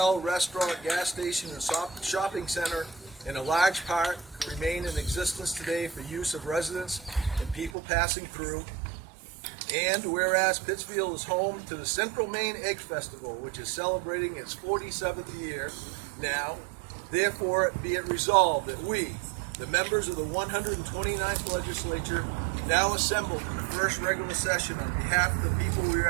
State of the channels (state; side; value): drops out; left; at 7.7 s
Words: restaurant, gas station, and shopping center in a large part remain in existence today for use of residents and people passing through. And whereas Pittsfield is home to the Central Maine Egg Festival, which is celebrating its 47th year now, therefore be it resolved that we, the members of the 129th Legislature, now assembled in the first regular session on behalf of the people we